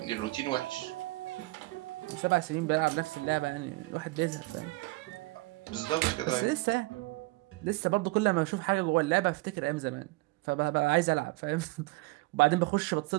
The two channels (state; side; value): quieter; left; 22.6 dB